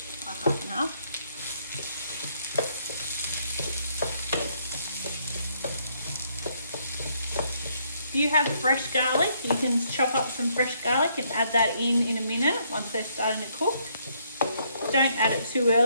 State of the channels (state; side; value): inverted; both; correlation -0.71